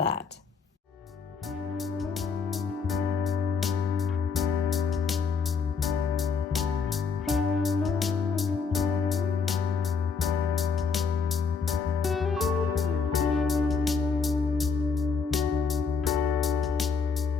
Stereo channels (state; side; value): quieter; right; 5.4 dB